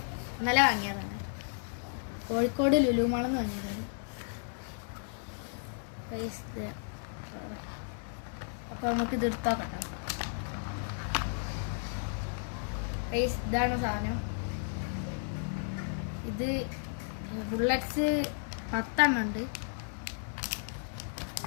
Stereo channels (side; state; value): right; silent; digital silence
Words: ഇന്നലെ വാങ്ങിയതാണ്, കോഴിക്കോട് ലുലു മാളിൽ നിന്ന് വാങ്ങിയതാണ് ഗൈസ്. അപ്പോൾ നമുക്കിത് എടുത്തോക്കാം ഗൈസ്. ഇതാണ് സാധനം. ഇത് ബുള്ളറ്റ്സ് 10 എണ്ണം ഉണ്ട്.